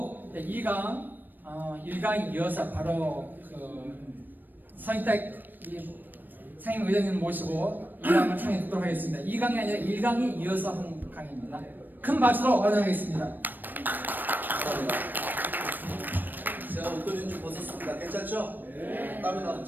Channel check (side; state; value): left; late; 0.091 ms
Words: 2강, 1강에 이어서 바로 서인택 상임의장님 모시고 2강을 청해 듣도록 하겠습니다. 2강이 아니라 1강에 이어서 한 강의입니다. 큰 박수로 환영하겠습니다. 감사합니다. 제가 옷걸이는 좀 벗었습니다. 괜찮죠? 네. 땀이 나서